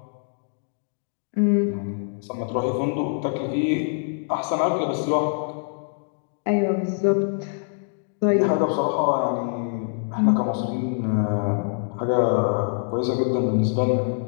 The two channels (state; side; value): silent; right; digital silence